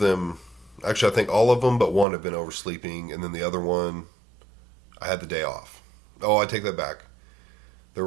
actually, I think all of them but one have been oversleeping, and then the other one, I had the day off. Oh, I take that back. There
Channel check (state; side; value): drops out; left; at 2.1 s